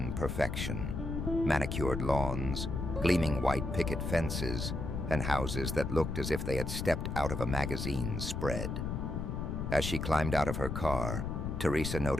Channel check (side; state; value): left; noise; rumble, 3 dB below the sound